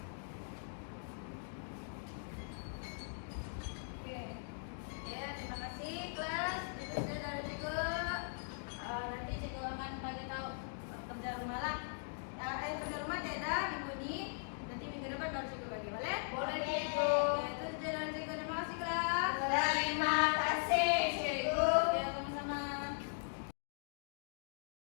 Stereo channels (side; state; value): right; silent; digital silence